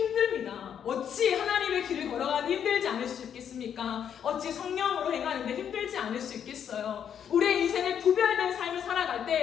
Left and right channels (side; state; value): right; quieter; 8.6 dB